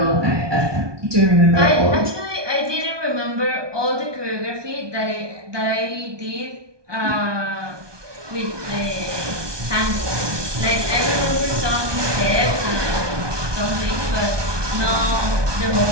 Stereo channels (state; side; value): late; left; 1.2 ms